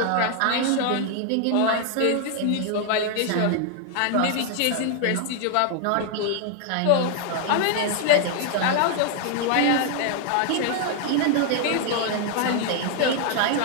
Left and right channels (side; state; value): both; different; correlation 0.00